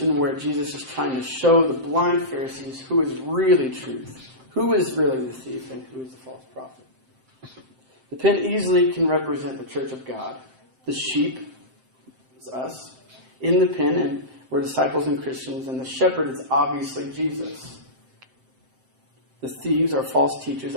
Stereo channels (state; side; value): late; left; 7.7 ms